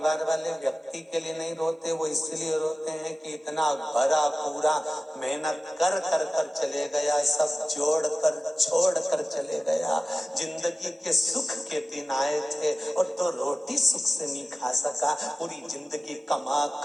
वाले व्यक्ति के लिए नहीं रोते, वो इसलिए रोते हैं कि इतना भरा पूरा मेहनत कर कर कर चले गया, सब जोड़ कर छोड़ कर चले गया, जिंदगी के सुख के दिन आए थे और तो रोटी सुख से नहीं खा सका, पूरी जिंदगी कमा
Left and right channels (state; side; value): normal; both; correlation 0.97